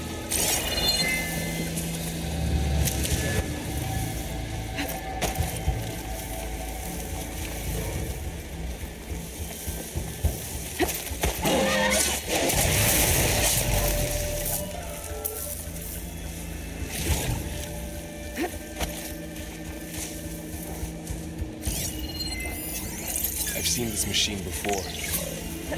I've seen this machine before.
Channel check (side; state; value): both; identical; correlation 1.00